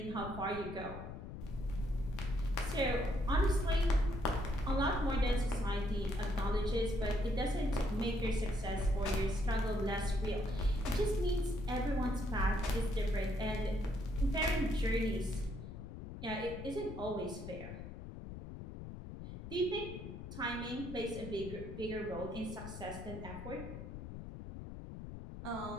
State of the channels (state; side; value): noise; left; rumble, 9 dB below the sound